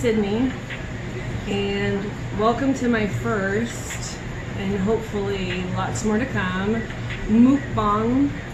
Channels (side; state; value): both; identical; correlation 1.00